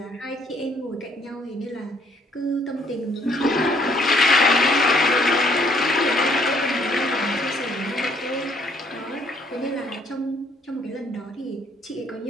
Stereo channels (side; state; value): both; normal; correlation 0.64